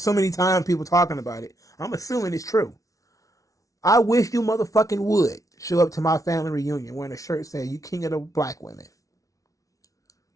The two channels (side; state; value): right; late; 0.17 ms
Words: many times, people talking about it. I'm assuming it's true. I wish you motherfucking would show up to my family reunion wearing a shirt saying you king of the black women.